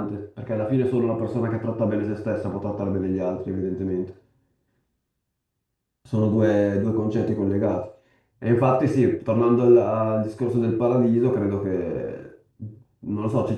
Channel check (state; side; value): identical; both; correlation 1.00